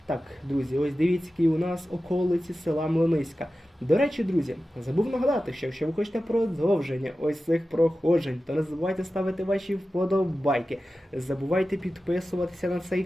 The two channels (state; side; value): normal; both; correlation 0.94